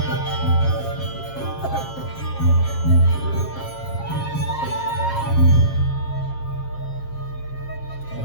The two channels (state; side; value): late; right; 7.4 ms